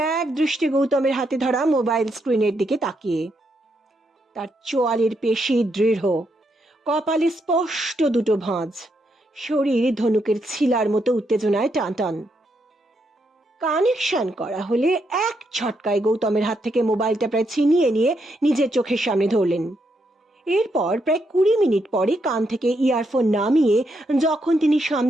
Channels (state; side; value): normal; both; correlation 0.79